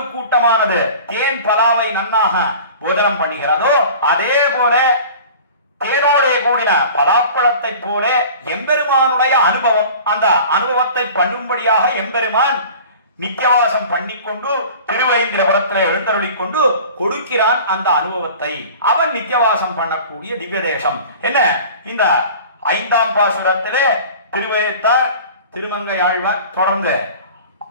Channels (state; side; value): inverted; both; correlation -0.42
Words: கூட்டமானது தேன் பலாவை நன்னாக போதனம் பண்ணுகிறதோ அதே போல தேனோட கூடின பலாப்பழத்தை போல எம்பெருமானுடைய அனுபவம், அந்த அனுபவத்தை பண்ணும்படியாக எம்பெருமான் நித்தியவாசம் பண்ணிக்கொண்டு திருவேந்திரபுரத்தில் எழுந்தருளிக் கொண்டு கொடுக்கிறான் அந்த அனுபவத்தை. அவன் நித்தியவாசம் பண்ணக்கூடிய திவ்ய தேசம் என்ன. இந்த 5ஆம் பாசுரத்திலே திருவேத்தார் திருமங்கையாழ்வார் தொடர்ந்து